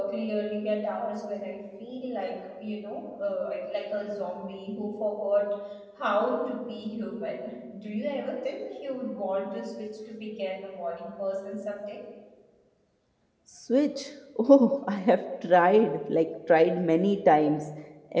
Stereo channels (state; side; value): identical; both; correlation 1.00